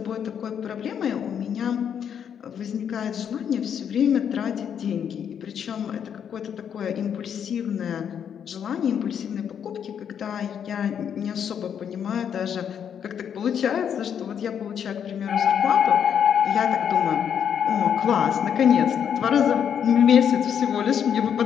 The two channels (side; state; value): right; quieter; 8.3 dB